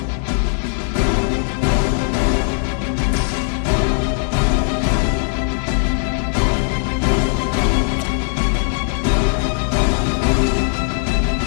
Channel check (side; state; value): right; silent; 58 dB below the other